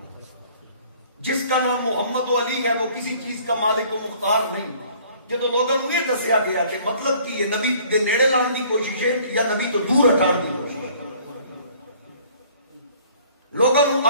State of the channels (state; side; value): inverted; both; correlation -0.55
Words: جس کا نام محمد و علی ہے وہ کسی چیز کا مالک و مختار نہیں. جدو لوگوں نے یہ دسیا گیا کہ مطلب کہ یہ نبی دے نیڑے لان دی کوشش ہے یا نبی تو دور ہٹان دی کوشش ہے. لوگوں نے